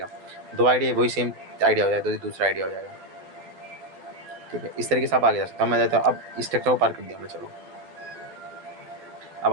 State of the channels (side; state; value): left; late; 11 ms